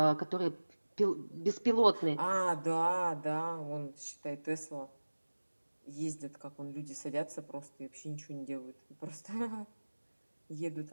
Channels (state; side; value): inverted; both; correlation -1.00